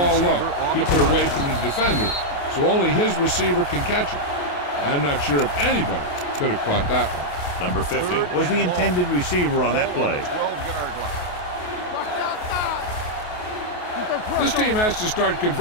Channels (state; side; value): late; right; 28 ms